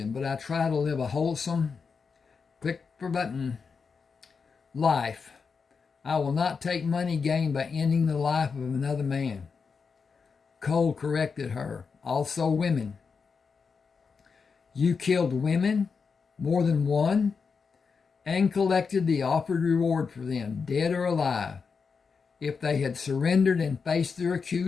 but I try to live a wholesome, click for button, life. I will not take money gained by ending the life of another man. Cole corrected her. Also women. You killed women, more than one, and collected the offered reward for them, dead or alive. If they had surrendered and faced their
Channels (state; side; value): quieter; right; 5.4 dB